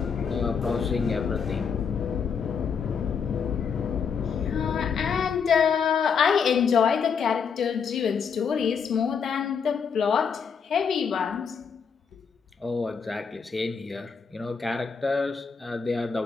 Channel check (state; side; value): quieter; right; 6.3 dB